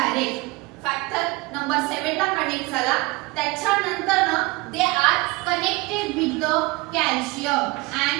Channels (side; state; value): left; quieter; 23.9 dB